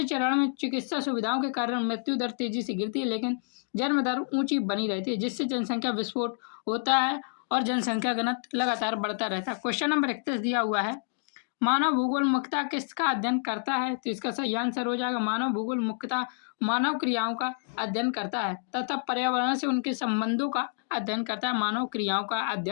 चरण में चिकित्सा सुविधाओं के कारण मृत्यु दर तेजी से गिरती है, लेकिन जन्म दर ऊंची बनी रहती है, जिससे जनसंख्या विस्फोट होता है और जनसंख्या घनत्व लगातार बढ़ता रहता है। क्वेश्चन नंबर 31 दिया हुआ है, मानव भूगोल मुख्यतः किसका अध्ययन करता है? तो इसका सही आंसर हो जाएगा मानव भूगोल मुख्यतः मानव क्रियाओं का अध्ययन करता है तथा पर्यावरण से उनके संबंधों का अध्ययन करता है। मानव क्रियाओं का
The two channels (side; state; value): right; silent; digital silence